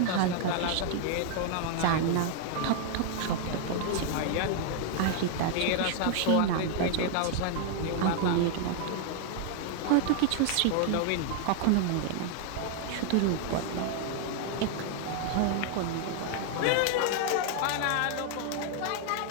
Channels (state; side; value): different; both; correlation 0.00